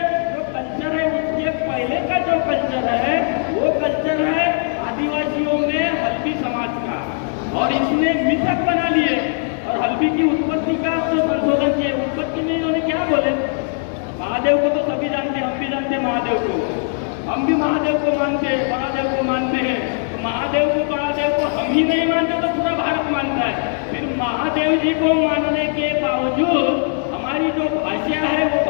जो कल्चर है उसके पहले का जो कल्चर है वो कल्चर है आदिवासियों में हल्बी समाज का, और इसने मिथक बना लिए और हल्बी की उत्पत्ति का जो संशोधन किए। उत्पत्ति में इन्होंने क्या बोले, महादेव को तो सभी जानते हैं, हम भी जानते हैं महादेव को, हम भी महादेव को मानते हैं, महादेव को मानते हैं। तो महादेव को हम ही नहीं मानते तो पूरा भारत मानता है। फिर महादेव जी को मानने के बावजूद हमारी जो भाषा है वो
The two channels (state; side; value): silent; right; 62 dB below the other